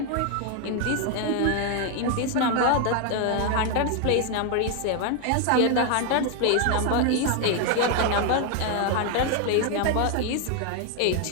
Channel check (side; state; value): both; different; correlation 0.00